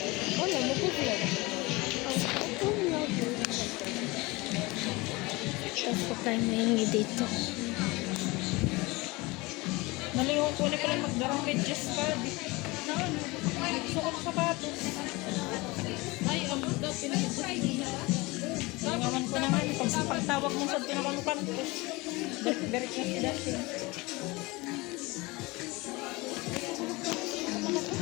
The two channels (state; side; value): quieter; right; 23.5 dB